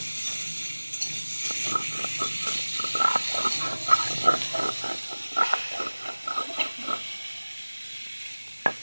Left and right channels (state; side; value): inverted; both; correlation -1.00